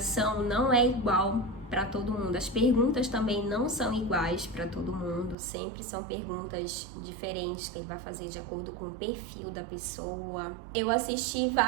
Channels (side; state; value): left; drops out; at 5.4 s